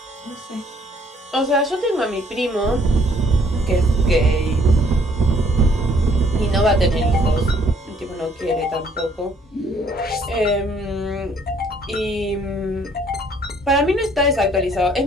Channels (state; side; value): normal; both; correlation 0.63